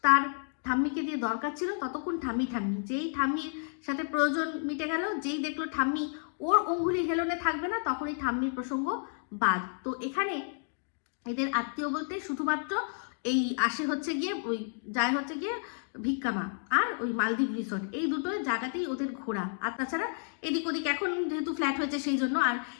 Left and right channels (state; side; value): silent; right; 57 dB below the other